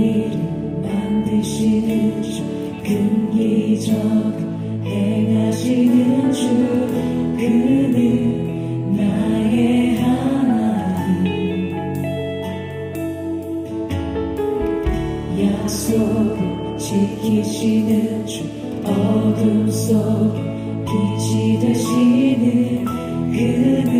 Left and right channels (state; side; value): identical; both; correlation 1.00